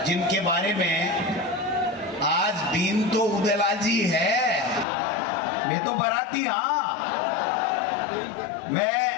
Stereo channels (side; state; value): right; drops out; at 4.9 s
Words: जिनके बारे में आज बीन तो उदयलाल जी है, मैं तो बराती। हाँ, मैं